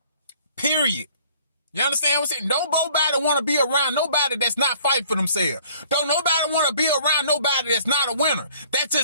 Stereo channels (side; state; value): both; inverted; correlation -0.56